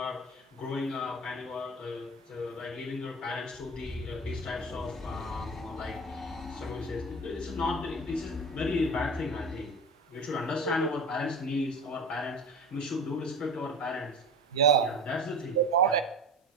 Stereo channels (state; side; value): normal; both; correlation 0.33